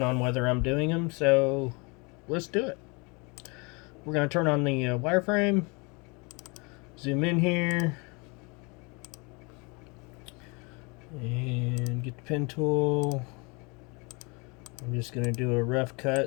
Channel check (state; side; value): quieter; right; 29.7 dB